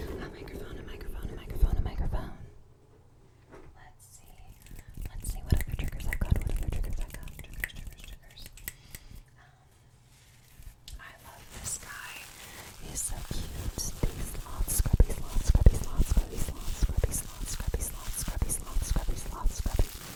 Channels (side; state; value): both; identical; correlation 1.00